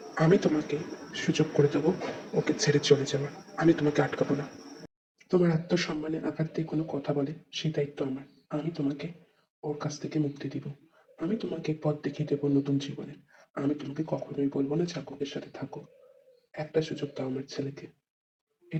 আমি তোমাকে সুযোগ করে দেবো ওকে ছেড়ে চলে যাওয়ার। আমি তোমাকে আটকাবো না। তোমার আত্মসম্মানে আঘাত দিয়ে কোনো কথা বলে সেই দায়িত্ব আমার। আমি তোমাকে ওর কাছ থেকে মুক্তি দিব। আমি তোমাকে পথ দেখিয়ে দেবো নতুন জীবনে। আমি তোমাকে কখনোই বলবো না জাঙ্কুকের সাথে থাকো। একটা সুযোগ দাও আমার ছেলেকে।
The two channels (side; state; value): both; identical; correlation 1.00